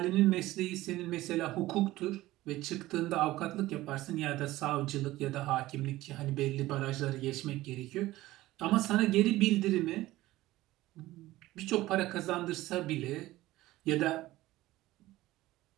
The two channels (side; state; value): left; quieter; 17.0 dB